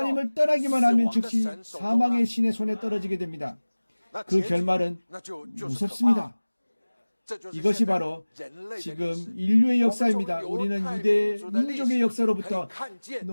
떠나기만 하면 즉시 사망의 신의 손에 떨어지게 됩니다. 그 결말은 무섭습니다. 이것이 바로 지금 인류의 역사입니다. 우리는 유대 민족의 역사로부터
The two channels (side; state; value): both; inverted; correlation -1.00